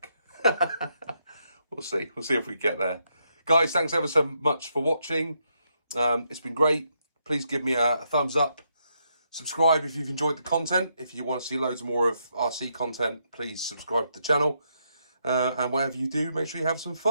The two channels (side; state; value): both; inverted; correlation -0.78